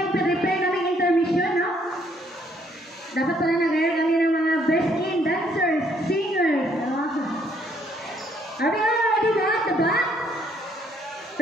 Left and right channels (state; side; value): normal; both; correlation 0.67